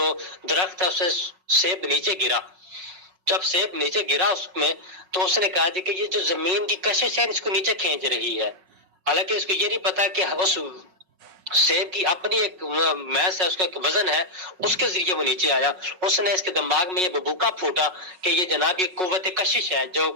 درخت ہے اسے سیب نیچے گرا، جب سیب نیچے گرا اس میں، تو اس نے کہا جی کہ یہ جو زمین کی کشش ہے اس کو نیچے کھینچ رہی ہے. حالانکہ اس کو یہ نہیں پتا کہ اس سیب کی اپنی ایک میس ہے، اس کا ایک وزن ہے، اس کے ذریعے وہ نیچے آیا. اس نے اس کے دماغ میں یہ ببوکا پھوٹا کہ یہ جناب یہ قوت کشش ہے، جو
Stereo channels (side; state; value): left; late; 5.4 ms